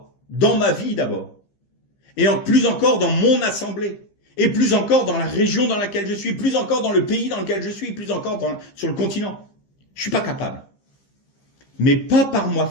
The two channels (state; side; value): late; right; 15 ms